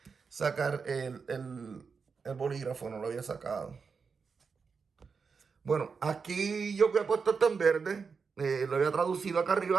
sacar el bolígrafo, no lo había sacado. Bueno, aquí yo había puesto esto en verde, lo había traducido acá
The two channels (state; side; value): quieter; left; 5.4 dB